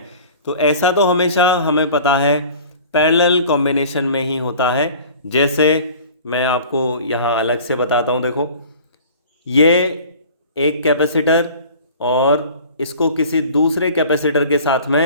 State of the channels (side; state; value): both; inverted; correlation -0.44